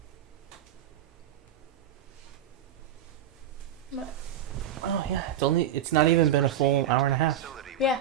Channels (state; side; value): quieter; left; 9.5 dB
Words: Oh yeah, it's not even been a full hour and a half. Facility with Yeah.